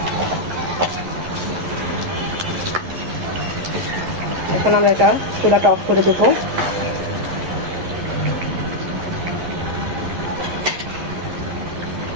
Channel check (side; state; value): left; late; 11 ms